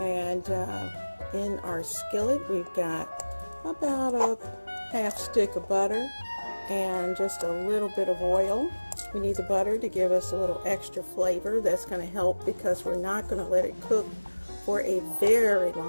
And in our skillet, we've got about a half stick of butter and just a little bit of oil. We need the butter to give us a little extra flavor. That's going to help because we're not going to let it cook for a very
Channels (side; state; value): both; inverted; correlation -1.00